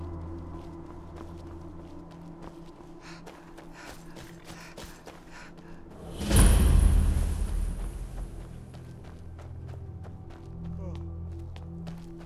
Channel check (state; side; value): identical; both; correlation 1.00